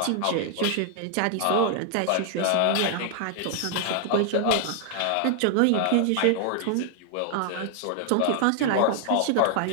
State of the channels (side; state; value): both; different; correlation 0.00